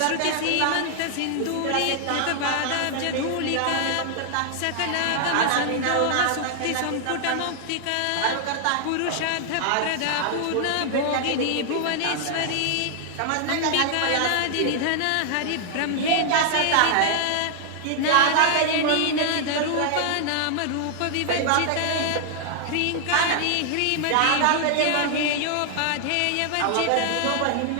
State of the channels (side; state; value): both; different; correlation 0.00